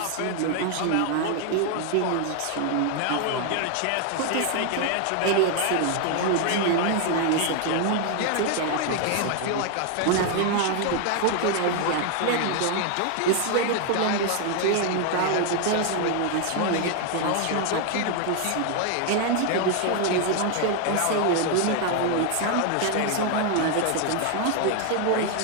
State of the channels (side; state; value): both; different; correlation 0.00